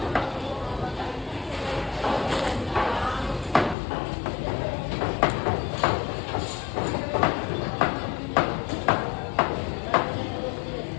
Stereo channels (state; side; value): drops out; right; at 3.8 s